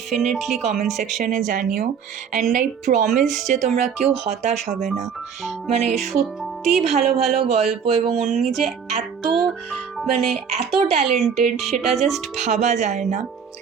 কমেন্ট সেকশনে জানিও, অ্যান্ড আই প্রমিস যে তোমরা কেউ হতাশ হবে না। মানে সত্যি ভালো ভালো গল্প, এবং উনি যে এত ট্যালেন্টেড সেটা জাস্ট ভাবা যায় না।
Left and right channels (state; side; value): quieter; left; 7.0 dB